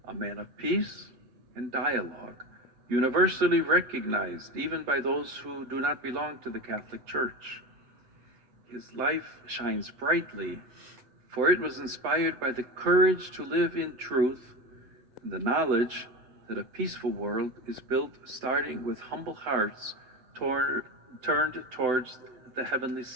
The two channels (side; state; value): left; late; 8.2 ms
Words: a man of peace and dialogue, universally recognized even by those who do not belong to the Catholic Church. His life shines brightly, for it was inspired by the courage to live in truth and the knowledge that a peaceful world is built starting with humble hearts turned towards the heavenly